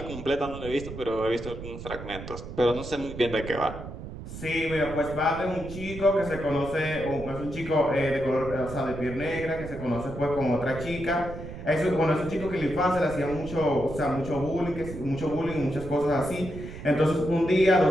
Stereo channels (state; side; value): noise; right; rumble, 11 dB below the sound